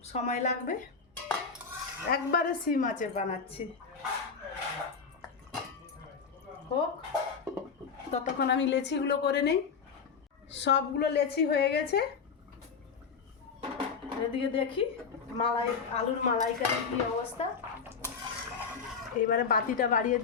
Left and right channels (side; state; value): right; quieter; 5.8 dB